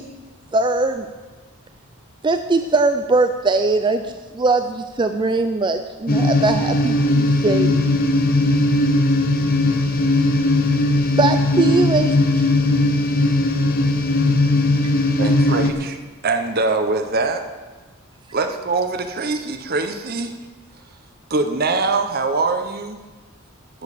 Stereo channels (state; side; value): normal; both; correlation 0.51